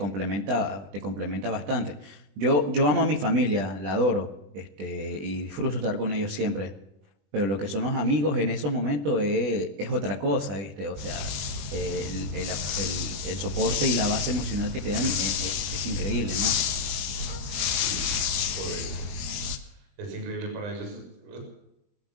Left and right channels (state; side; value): late; left; 20 ms